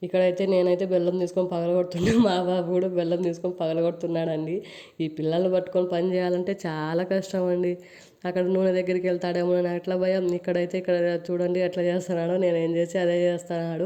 ఇక్కడైతే నేనైతే బెల్లం తీసుకొని పగలగొడుతున్నాను, మా బాబు కూడా బెల్లం తీసుకొని పగలగొడుతున్నాడండి. ఈ పిల్లల్ని పట్టుకొని పని చేయాలంటే చాలా కష్టం అండి. అక్కడ నూనె దగ్గరికి వెళ్తాడేమో అని అట్లా భయం. ఇక్కడ చూడండి ఎట్లా చేస్తున్నాడో, నేను ఏం చేసి అదే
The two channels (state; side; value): identical; both; correlation 1.00